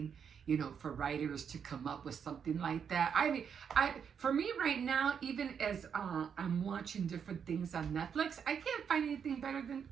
for writers to come up with something like that. For me right now, even as I'm watching different things on Netflix, I can't find anything better than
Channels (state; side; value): quieter; left; 7.3 dB